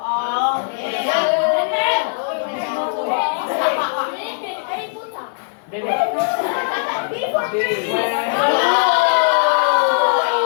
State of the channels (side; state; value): right; silent; 57 dB below the other